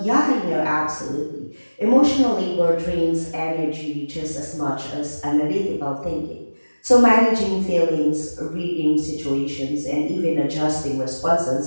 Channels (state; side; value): inverted; both; correlation -1.00